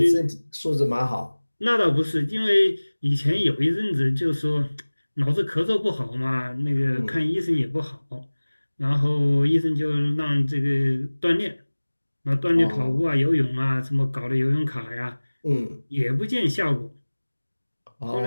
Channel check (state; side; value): inverted; both; correlation -1.00